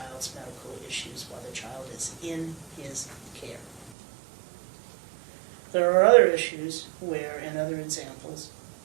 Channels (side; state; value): left; drops out; at 3.9 s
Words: medical issues while the child is in his care. There are other issues where, and other examples,